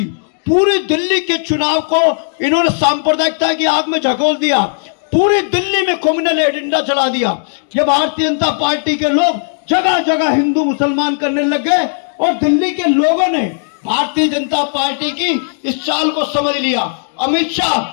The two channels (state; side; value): silent; right; digital silence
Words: पूरी दिल्ली के चुनाव को इन्होंने सांप्रदायिकता की आग में झकोल दिया। पूरी दिल्ली में कम्युनल एजेंडा चला दिया। ये भारतीय जनता पार्टी के लोग जगह जगह हिंदू मुसलमान करने लग गए और दिल्ली के लोगों ने भारतीय जनता पार्टी की इस चाल को समझ लिया। अमित